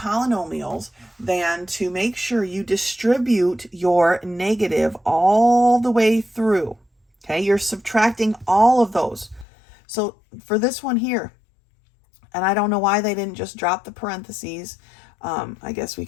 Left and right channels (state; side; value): drops out; right; at 9.5 s